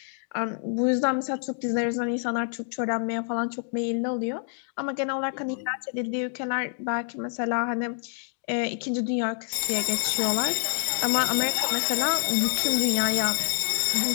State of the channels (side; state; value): right; silent; digital silence